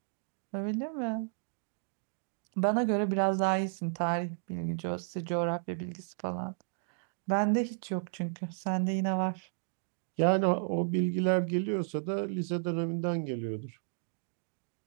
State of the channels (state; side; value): silent; left; digital silence